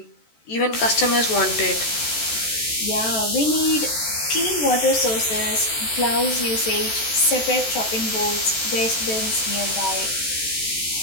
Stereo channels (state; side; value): late; right; 14 ms